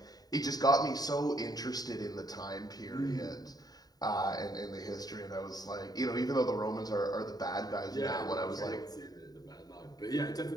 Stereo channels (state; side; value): late; right; 0.18 ms